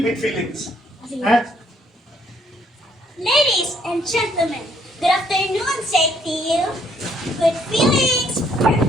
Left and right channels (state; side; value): normal; both; correlation 0.68